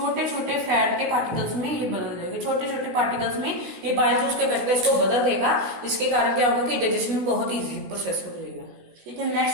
छोटे फैट के पार्टिकल्स में ये बदल देगा, छोटे छोटे पार्टिकल्स में ये बाइल जूस के करके इसको बदल देगा, जिसके कारण क्या होगा कि डाइजेशन में बहुत ईजी प्रोसेस हो जाएगा। ठीक है,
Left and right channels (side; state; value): left; late; 16 ms